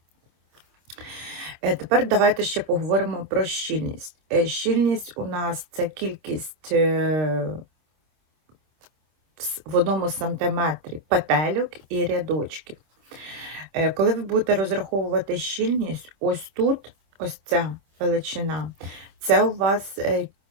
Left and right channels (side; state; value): left; late; 26 ms